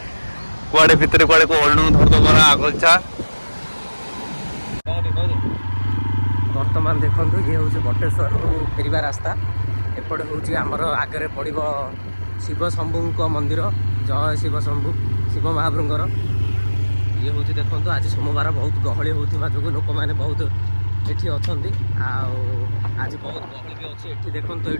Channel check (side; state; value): both; inverted; correlation -1.00